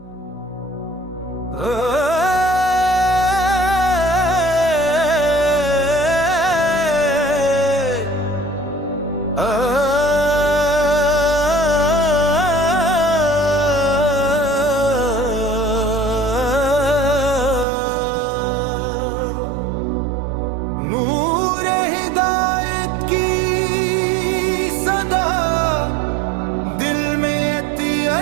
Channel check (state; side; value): drops out; left; at 17.7 s